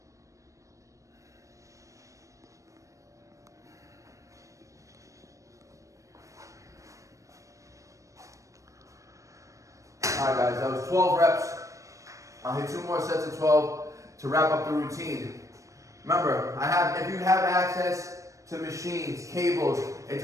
Alright guys, that was 12 reps. I'll hit 2 more sets of 12 to wrap up the routine. Remember, if you have access to machines, cables,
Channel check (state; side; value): late; left; 0.15 ms